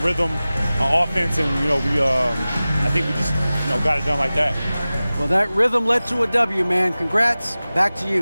on offense, and I think we just got it done like that. Well, that rhythm led to a W, man. Congrats. Back to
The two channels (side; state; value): both; inverted; correlation -0.97